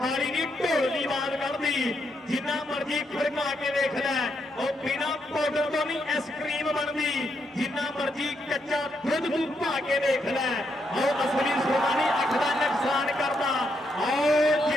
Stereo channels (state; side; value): normal; both; correlation 0.79